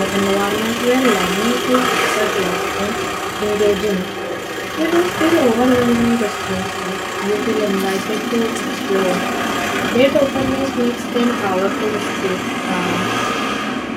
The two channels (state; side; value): identical; both; correlation 1.00